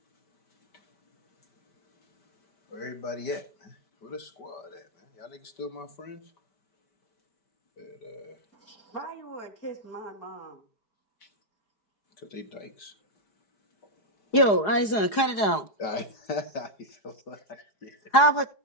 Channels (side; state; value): right; late; 4.8 ms